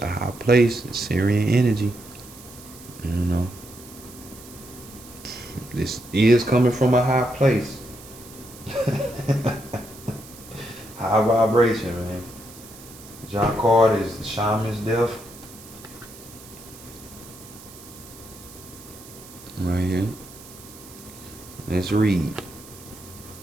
high place. It's Syrian energy. You know. This is coming from a high place. High vibration, man. Y'all card is the Shaman's Death. Right here. Let's read.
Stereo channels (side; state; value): right; noise; hiss, 18 dB below the sound